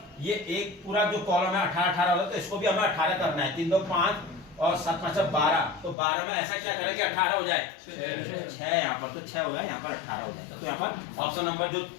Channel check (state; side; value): drops out; right; at 6.0 s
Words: ये एक पूरा जो कॉलम है 18 18 होगा, तो इसको भी हमें 18 करना है। 3 2 5 और 7 5 12, तो 12 में ऐसा क्या करें कि 18 हो जाए, 6 यहाँ पर, तो 6 हो जाए, यहाँ पर 18 हो जाएगा। तो यहाँ पर ऑप्शन नंबर जो